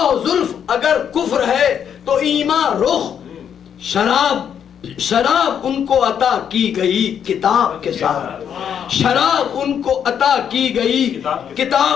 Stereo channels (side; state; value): right; quieter; 8.4 dB